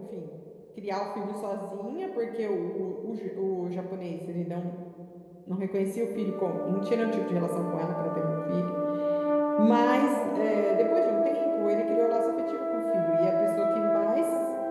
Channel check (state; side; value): identical; both; correlation 1.00